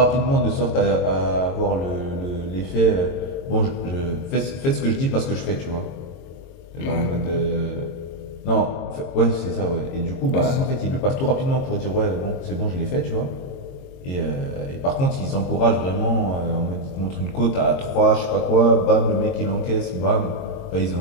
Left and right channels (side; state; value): right; late; 22 ms